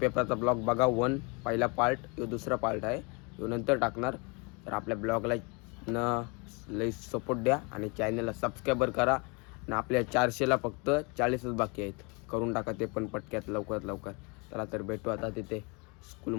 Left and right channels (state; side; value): quieter; right; 30.7 dB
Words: ब्लॉग बघा. पहिला पार्ट, यो दुसरा पार्ट आहे, यो नंतर टाकणार. तर आपल्या ब्लॉगला लई सपोर्ट द्या आणि चॅनलला सबस्क्राईबर करा. आणि आपल्या 400ला फक्त 40च बाकी आहेत, करून टाका ते पण पटक्यात लवकरात लवकर. चला तर भेटू आता तिथे